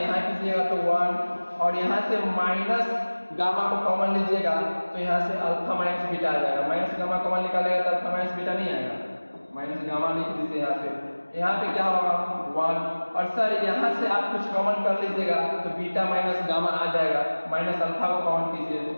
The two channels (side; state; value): both; inverted; correlation -1.00